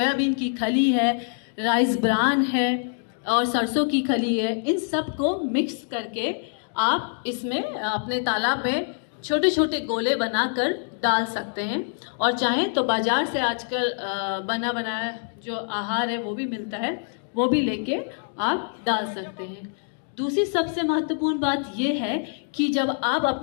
की खली है, राइस ब्रान है और सरसों की खली है, इन सब को मिक्स करके आप इसमें अपने तालाब में छोटे छोटे गोले बनाकर डाल सकते हैं। और चाहें तो बाजार से आजकल बना बनाया जो आहार है वो भी मिलता है, वो भी लेके आप डाल सकते हैं। दूसरी सबसे महत्वपूर्ण बात ये है कि जब आप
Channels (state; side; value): silent; right; 62 dB below the other